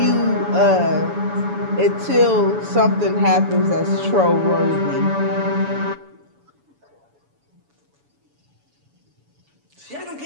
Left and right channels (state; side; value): late; left; 7.0 ms